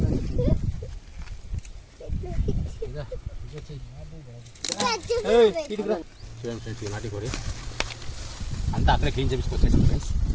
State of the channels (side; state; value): both; identical; correlation 1.00